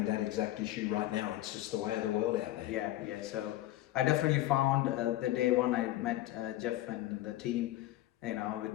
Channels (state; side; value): quieter; right; 15.4 dB